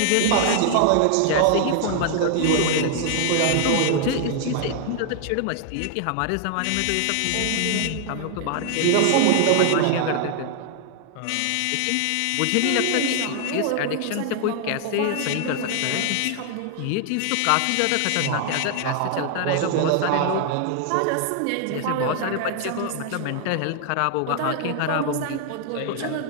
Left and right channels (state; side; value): different; both; correlation 0.00